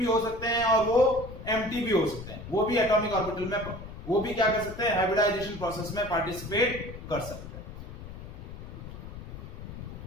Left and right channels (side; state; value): left; noise; rumble, 12 dB below the sound